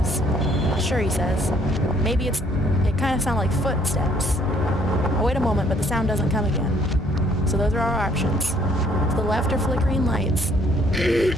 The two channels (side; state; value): both; normal; correlation 0.63